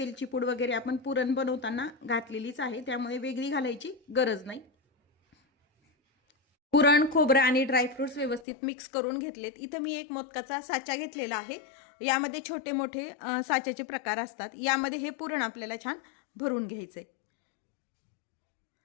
पूड वगैरे आपण पुरण बनवताना घातलेलीच आहे, त्यामुळे वेगळी घालायची गरज नाही। पुरण, खोबरं आणि ड्रायफ्रुट्स व्यवस्थित मिक्स करून घेतलेत। इथे मी एक मोदकाचा साचा घेतलेला आहे। यामध्ये छोटे मोठे साच्याचे प्रकार असतात। यामध्ये हे पुरण आपल्याला छान भरून घ्यायचे।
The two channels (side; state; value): right; drops out; at 8.5 s